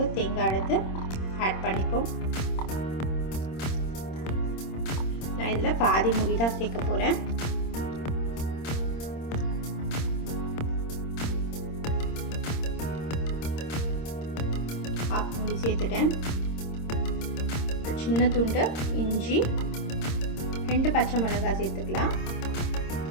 தேங்காய் எடுத்து ஆட் பண்ணிப்போம். நான் இதில் பாதி மூடி தான் சேர்க்க போகிறேன். ஆஃப் மூடி சேர்த்துட்டேன். சின்ன துண்டு இஞ்சி, 2 பச்சை மிளகாய் சேர்த்துக்கலாம்.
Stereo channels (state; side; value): late; right; 26 ms